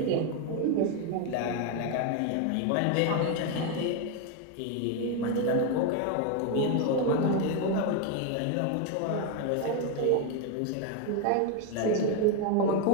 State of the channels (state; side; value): different; both; correlation 0.01